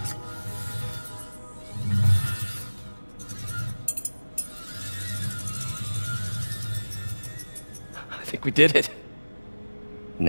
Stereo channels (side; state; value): both; inverted; correlation -1.00